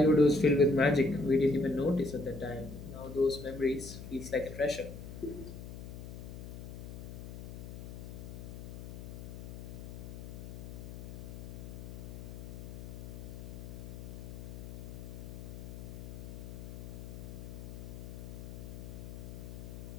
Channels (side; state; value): left; noise; hum, 9 dB below the sound